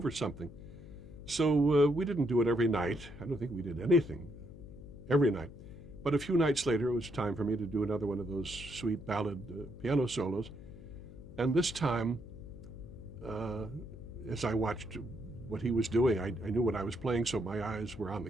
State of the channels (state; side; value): noise; left; hum, 15 dB below the sound